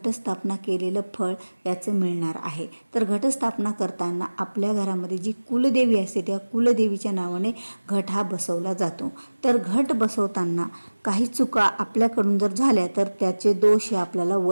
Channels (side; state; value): both; inverted; correlation -1.00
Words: केलेलं फळ याचं मिळणार आहे. तर घटस्थापना करताना आपल्या घरामध्ये जी कुलदेवी असते त्या कुलदेवीच्या नावाने घट हा बसवला जातो. तर घट बसवताना काही चुका आपल्याकडून जर झाल्या तर त्याचे दोष हे आपल्याला